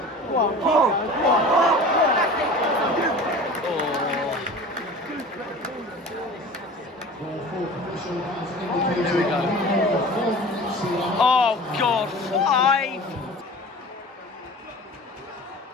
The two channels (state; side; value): normal; both; correlation 0.39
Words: we go. Oh God, 5.